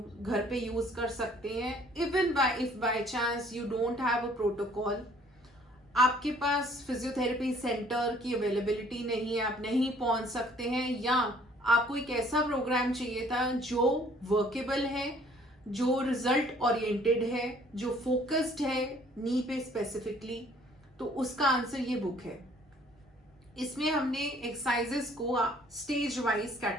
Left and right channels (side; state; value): both; normal; correlation 0.58